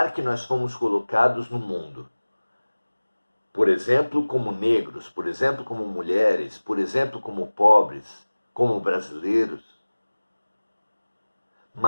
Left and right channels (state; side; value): inverted; both; correlation -1.00